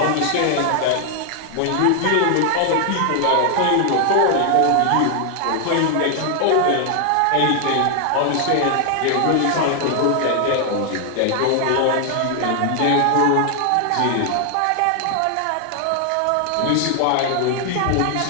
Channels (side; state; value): both; different; correlation 0.00